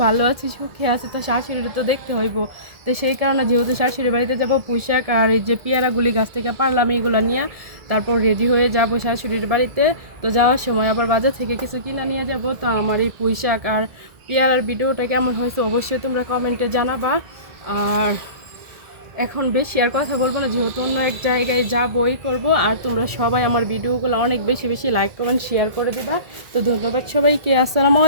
ভালো আছে সুখে আছে, তো শাশুড়ির তো দেখতে হইব। তো সেই কারণে যেহেতু শাশুড়ি বাড়িতে যাব, পুঁইশাক আর এই যে পেয়ারাগুলি গাছ থেকে পারলাম এইগুলো নিয়ে তারপর রেডি হয়ে যাব শাশুড়ির বাড়িতে। তো যাওয়ার সময় আবার বাজার থেকে কিছু কিনে নিয়ে যাব। তো আমার এই পুঁইশাক আর পেয়ারার ভিডিওটা কেমন হয়েছে অবশ্যই তোমরা কমেন্টে জানাবা। আর এখন বেশি আর কথা বলবো না, যেহেতু অন্য এক জায়গায় যাবই করবো। আর তোমরা সবাই আমার ভিডিওগুলো অনেক বেশি বেশি লাইক কমেন্ট শেয়ার করে দেবা। তো ধন্যবাদ সবাইকে, আসসালামু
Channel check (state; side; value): late; left; 1.7 ms